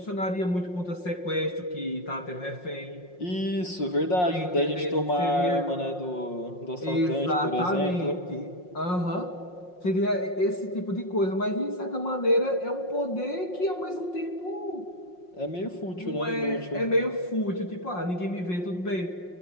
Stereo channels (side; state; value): right; late; 5.6 ms